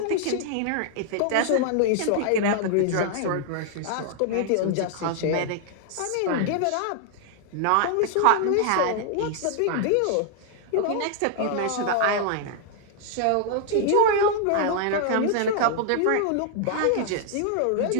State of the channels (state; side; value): different; both; correlation 0.00